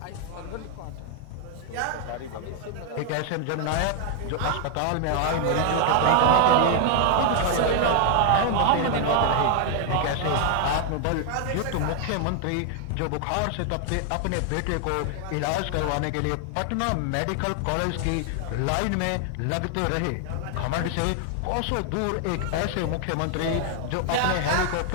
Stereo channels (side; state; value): both; different; correlation 0.00